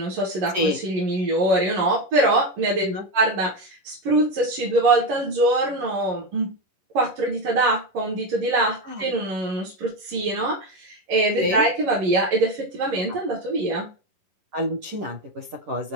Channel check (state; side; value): late; left; 11 ms